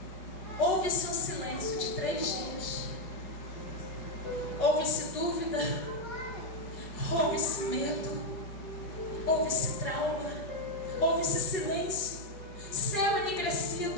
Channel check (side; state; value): right; late; 5.3 ms